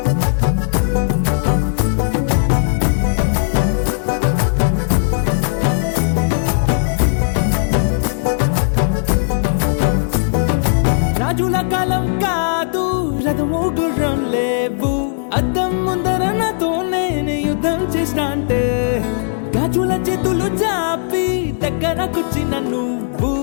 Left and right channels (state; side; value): silent; right; digital silence